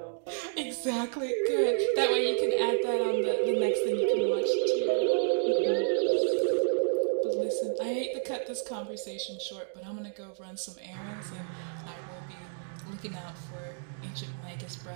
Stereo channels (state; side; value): silent; left; digital silence